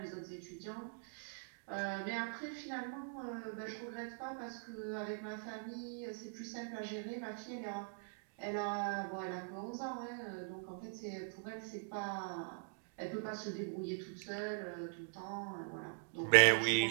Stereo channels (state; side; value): silent; left; digital silence